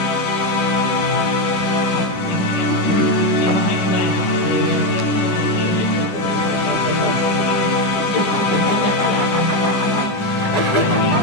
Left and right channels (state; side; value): late; right; 10 ms